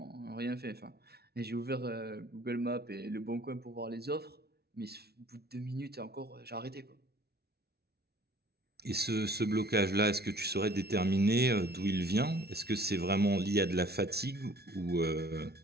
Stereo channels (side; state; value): left; late; 0.46 ms